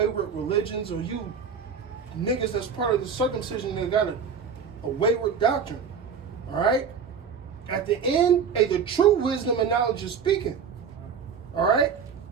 religions, or you niggas that's part of the circumcision that got a wayward doctrine. All right. At the end, hey, the true wisdom and knowledge is speaking. All right.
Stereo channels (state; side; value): quieter; left; 6.5 dB